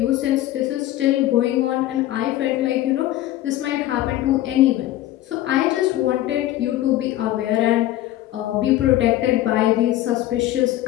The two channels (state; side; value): quieter; right; 14.5 dB